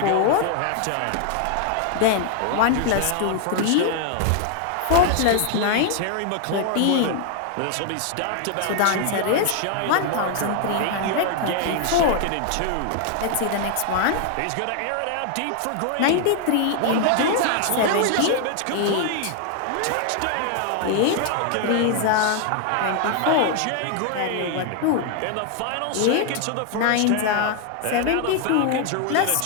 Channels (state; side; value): different; both; correlation 0.00